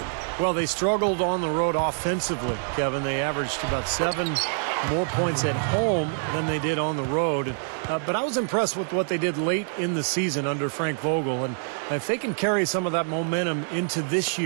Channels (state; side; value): silent; left; 61 dB below the other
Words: Well, they struggled on the road offensively, Kevin. They averaged about 7 more points at home than they did on the road. But I was impressed with what they did late in the season under Frank Vogel. And if they can carry some of that momentum into this